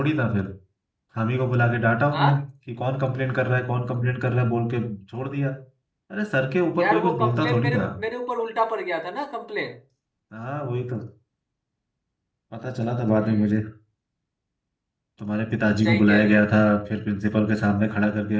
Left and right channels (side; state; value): both; identical; correlation 1.00